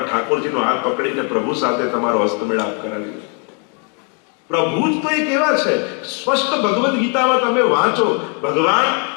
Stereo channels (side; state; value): right; quieter; 36.7 dB